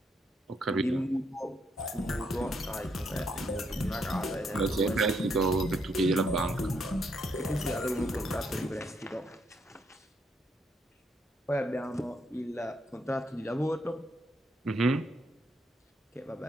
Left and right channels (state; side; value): normal; both; correlation 0.75